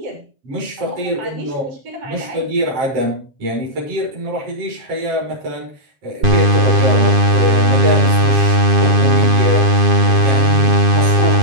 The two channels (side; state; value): left; late; 7.4 ms